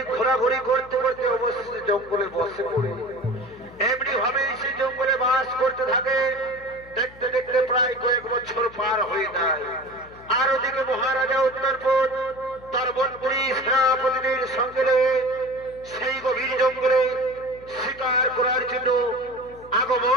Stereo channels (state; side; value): noise; left; hum, 22 dB below the sound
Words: ঘোরাঘুরি করতে করতে অবশেষে জঙ্গলে বসে পড়ে এমনি ভাবে সে জঙ্গলে বাস করতে থাকে। দেখতে দেখতে প্রায় কয়েক বছর পার হয়ে যায়। আর ওদিকে মহারাজা উত্তরপদ তার মন্ত্রী সেনাপতিদের সঙ্গে সেই গভীর জঙ্গলে শিকার করার জন্য